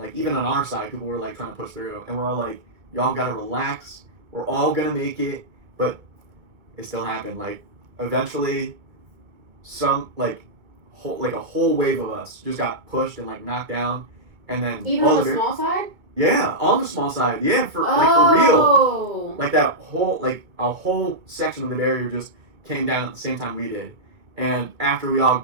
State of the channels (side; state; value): left; late; 2.2 ms